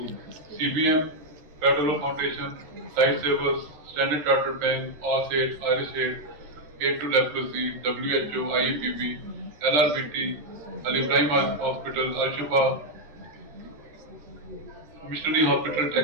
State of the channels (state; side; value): late; left; 13 ms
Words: CBM, Federal Foundation, Lifesavers, Standard Chartered Bank, OSAID, IRIS-AID, Aid to Leprosy, WHO, IEPB, LRBT, Al Ibrahim Hospital, Al Shifa, Missionary Hospital,